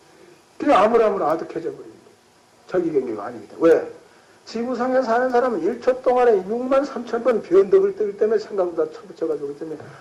그냥 아무나 아득해져 버립니다. 자기 경계가 아닙니다. 왜? 지구상에 사는 사람은 1초 동안에 6만 3천 번 변덕을 뜨기 때문에 생각보다 쳐붙여가지고 그기 때문에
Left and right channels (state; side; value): identical; both; correlation 1.00